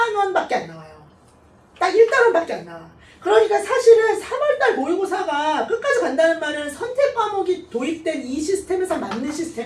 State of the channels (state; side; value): identical; both; correlation 1.00